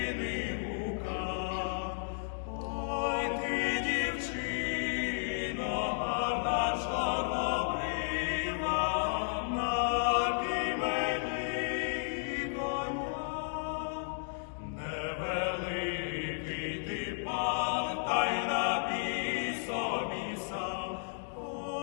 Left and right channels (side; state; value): right; silent; digital silence